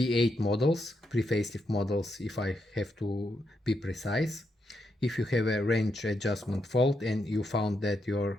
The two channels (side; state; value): both; normal; correlation 0.81